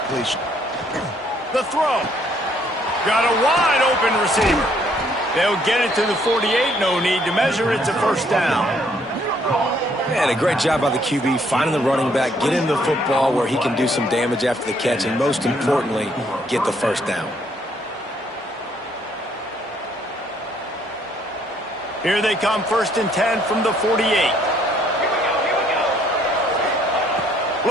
The throw. Got a wide-open receiver. They'll get it to the 48. No need to measure. It's a first down. Man, a great job by the QB, finding the running back, getting the football where he can do some damage after the catch, and most importantly, get the first down. Here they come, 1st and 10 from the 48.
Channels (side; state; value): both; normal; correlation 0.66